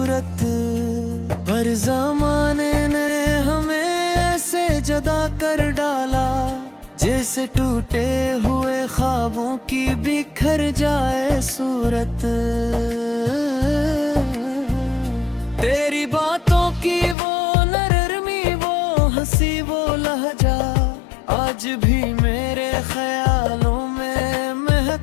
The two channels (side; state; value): right; drops out; at 17.2 s